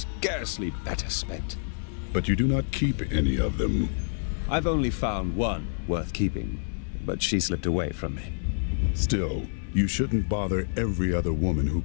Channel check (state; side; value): silent; right; digital silence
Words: better spent. But you do not keep any of them. I've only found one worth keeping, but she slipped away from me. Still, you shouldn't bother every other woman who